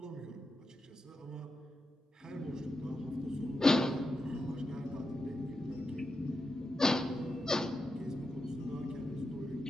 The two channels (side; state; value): both; normal; correlation 0.88